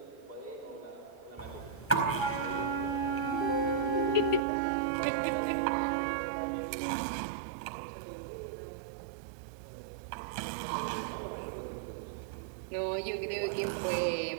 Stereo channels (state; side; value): drops out; left; at 4.4 s